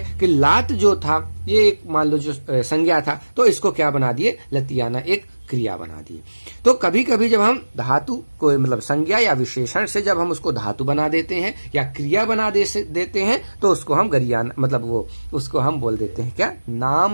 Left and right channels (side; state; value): both; inverted; correlation -1.00